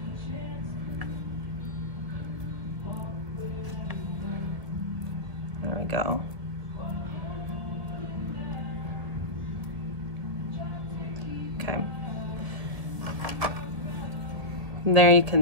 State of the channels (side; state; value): left; late; 1.9 ms